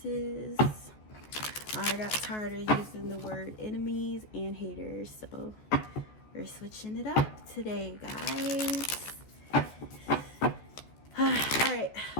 I got tired of using the word enemies and haters, so we're switching it up today, guys. Alright,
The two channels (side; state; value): right; late; 14 ms